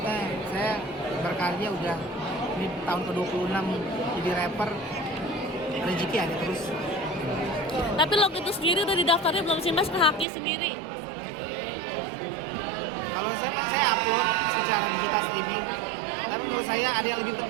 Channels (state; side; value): drops out; left; at 10.2 s